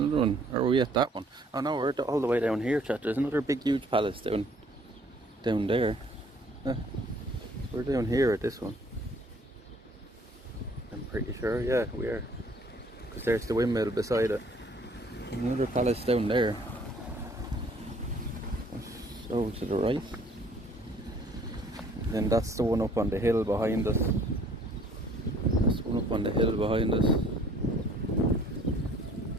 one. Or are we at that one? Oh no, we're all the way down here, chat. There's another big huge palace down there. We're down here at this one, I'm pretty sure. Yeah, we are, because there's the windmill beside it. There's another palace down there. Over to the right, and then that's the one up on the hill behind us. That's the one up on the hill behind us.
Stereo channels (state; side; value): normal; both; correlation 0.58